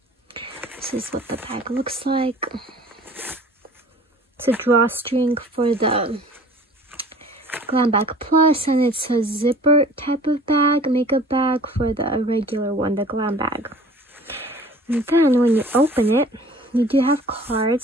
This is what the bag looks like. It's a drawstring for the Glam Bag Plus, and it's a zipper type of bag, makeup bag for the regular one, the Glam Bag. And then when you open it, you do have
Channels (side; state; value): both; normal; correlation 0.47